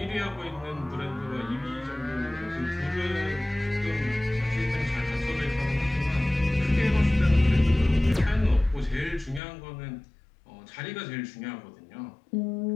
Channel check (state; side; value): drops out; right; at 9.4 s